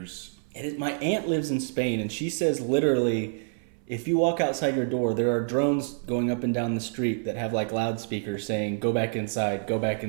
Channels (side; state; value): left; silent; 57 dB below the other